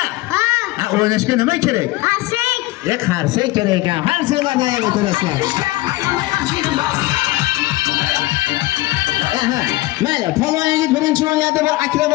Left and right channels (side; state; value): right; quieter; 19.2 dB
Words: Ha. O'ynashga nima kerak? Qarsak. Qarsak kerak ekan. Qarsaklarda ham o'tirasizlar. Mayli, polvon yigit birinchi o'yinlarda bir